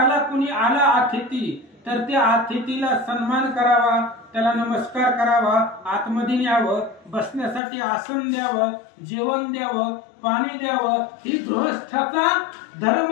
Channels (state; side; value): drops out; right; at 7.6 s